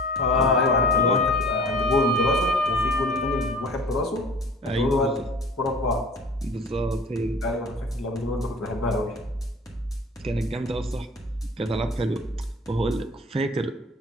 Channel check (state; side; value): normal; both; correlation 0.45